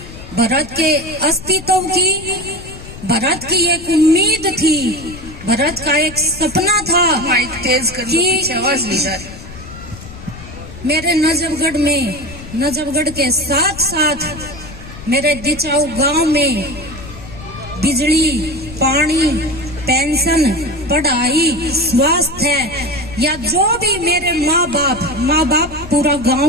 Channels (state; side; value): noise; left; rumble, 14 dB below the sound